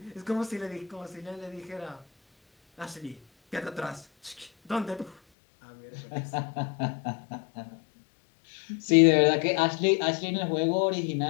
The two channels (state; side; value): drops out; right; at 5.2 s